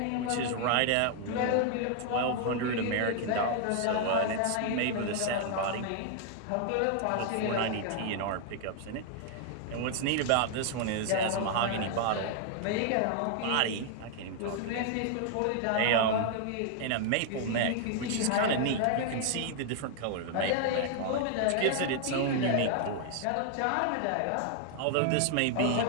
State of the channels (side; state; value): both; different; correlation 0.00